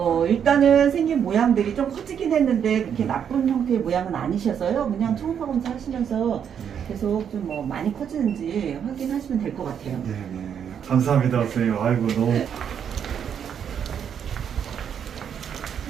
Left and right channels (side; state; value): left; quieter; 8.2 dB